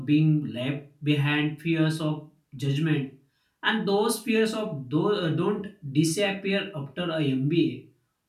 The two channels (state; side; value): identical; both; correlation 1.00